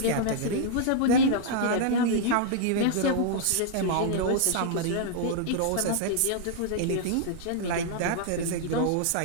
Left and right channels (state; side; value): different; both; correlation -0.01